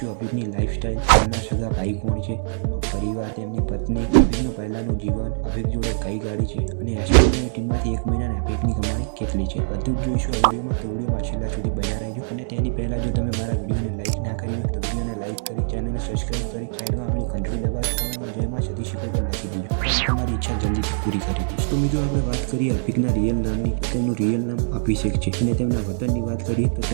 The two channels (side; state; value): left; silent; digital silence